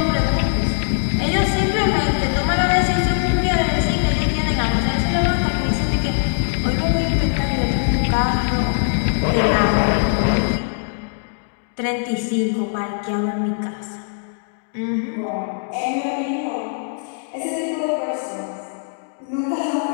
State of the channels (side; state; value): right; silent; digital silence